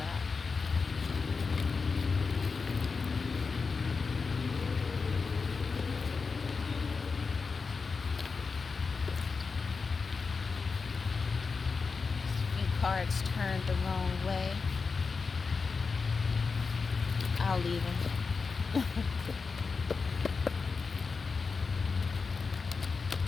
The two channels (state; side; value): quieter; right; 4.8 dB